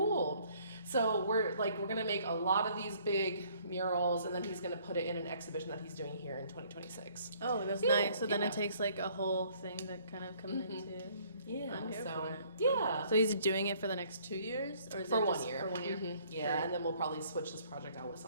So we're gonna make a lot of these big murals, and then he's gonna put it in an exhibition that he's doing here in 2026. Oh, that's nice. So then it takes like a whole thing that kind of comes into. Yeah. I'm here for it. Yeah. So he's doing it for the next 2 years, or is For it 1 just year. For 1 year. Yeah, Great. and then we'll probably switch this project out with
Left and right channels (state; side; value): inverted; both; correlation -0.61